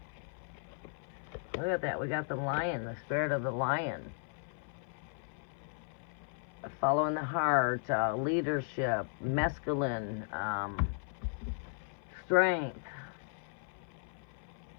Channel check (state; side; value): silent; right; 54 dB below the other